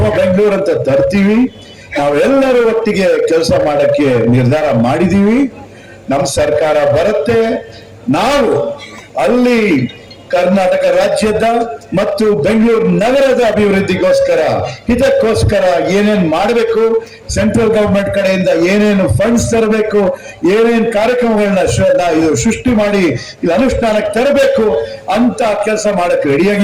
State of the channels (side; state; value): both; identical; correlation 1.00